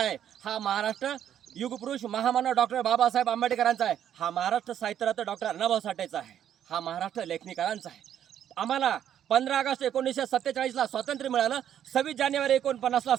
हा महाराष्ट्र युगपुरुष महामानव डॉक्टर बाबासाहेब आंबेडकरांचा आहे. हा महाराष्ट्र साहित्यरत्न डॉक्टर अण्णाभाऊ साठेचा आहे. हा महाराष्ट्र लेखनिकारांचा आहे. आम्हाला 15 ऑगस्ट 1947ला स्वातंत्र्य मिळालं. 26 जानेवारी 49ला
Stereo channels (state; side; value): quieter; left; 10.0 dB